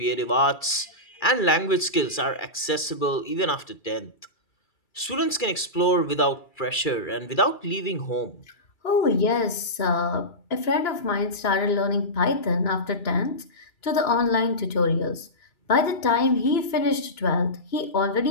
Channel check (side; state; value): right; late; 2.3 ms